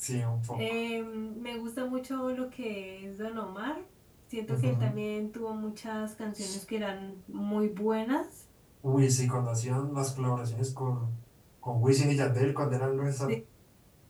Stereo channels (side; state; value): both; identical; correlation 1.00